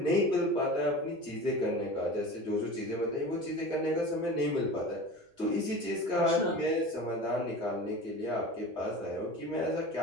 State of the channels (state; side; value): normal; both; correlation 0.34